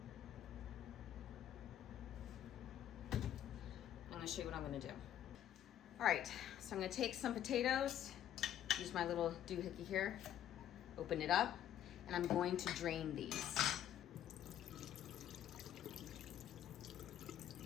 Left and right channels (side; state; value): right; quieter; 11.0 dB